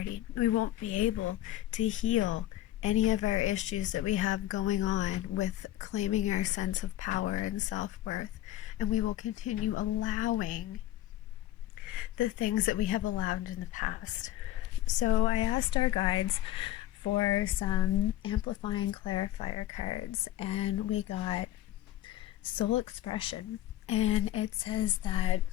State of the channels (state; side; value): quieter; right; 13.8 dB